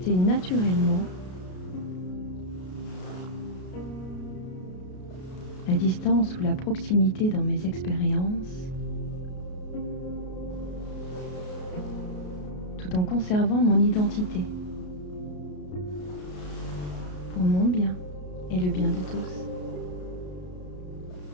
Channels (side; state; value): right; late; 33 ms